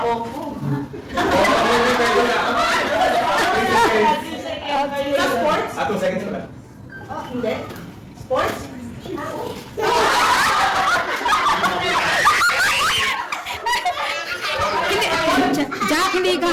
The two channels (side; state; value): both; identical; correlation 1.00